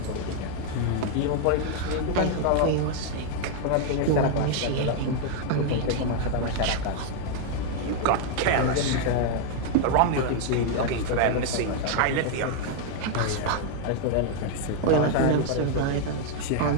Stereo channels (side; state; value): both; different; correlation 0.00